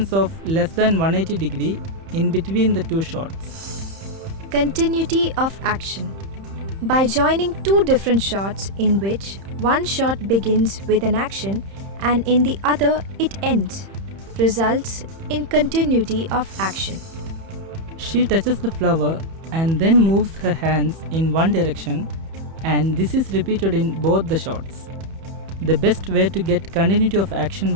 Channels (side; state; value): left; late; 31 ms